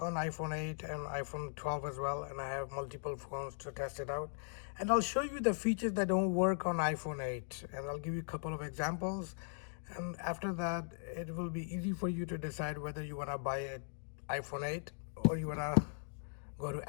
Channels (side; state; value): right; silent; digital silence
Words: iPhone 8 and iPhone 12 as well, and I have multiple phones to test it out. And I'll show you the features that don't work on iPhone 8, and I'll give you a couple of examples. And after that, it will be easy for you to decide whether you want to buy an iPhone 8 or you want to go to